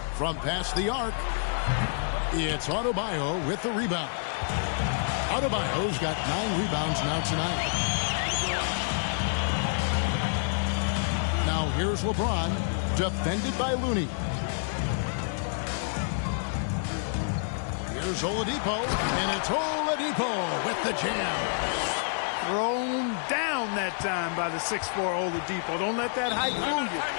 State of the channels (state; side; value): silent; right; digital silence